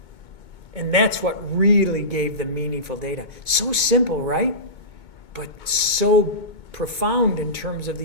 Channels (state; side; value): late; right; 2.2 ms